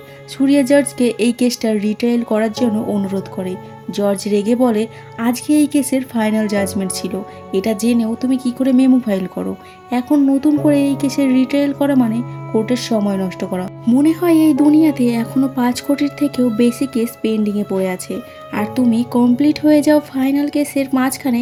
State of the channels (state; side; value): identical; both; correlation 1.00